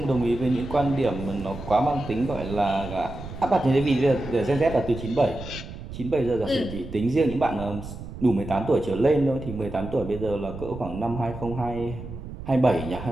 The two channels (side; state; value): right; noise; rumble, 11 dB below the sound